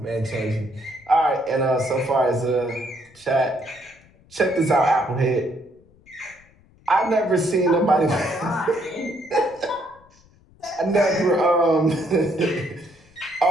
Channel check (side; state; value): left; noise; rumble, 29 dB below the sound